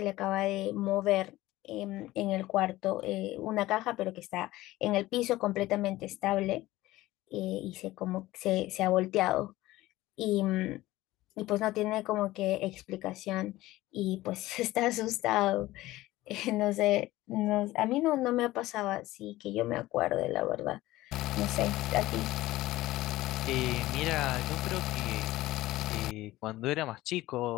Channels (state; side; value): quieter; right; 17.3 dB